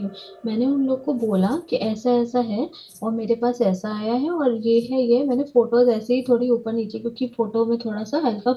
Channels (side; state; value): both; identical; correlation 1.00